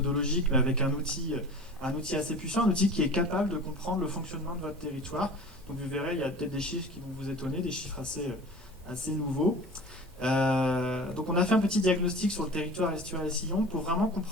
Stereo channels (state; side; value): normal; both; correlation 0.39